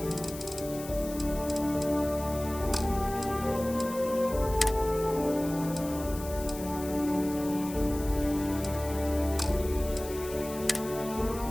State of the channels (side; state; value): left; noise; hiss, 13 dB below the sound